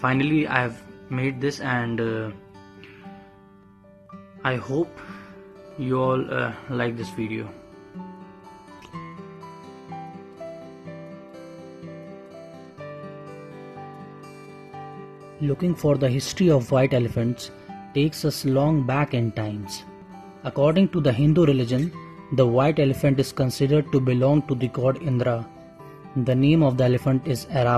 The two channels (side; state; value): both; identical; correlation 1.00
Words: finally I have made this, and I hope you all like this video. Looking for the history of white elephants takes us long back in times. According to the Hindu religion, the white elephant is considered to belong to the god Indra. The name of the elephant is